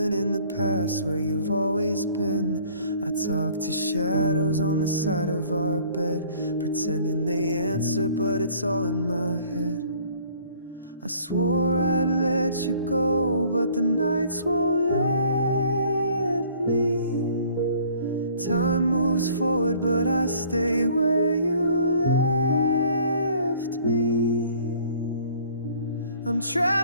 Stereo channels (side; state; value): both; inverted; correlation -0.55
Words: in the past where you've always been. I talk to shadows on the side of our bed, pretending they answer, but it's all in my head. I swore I'd let you go, but the nights won't let me. Time moves forward, but I stay where you left me. I'm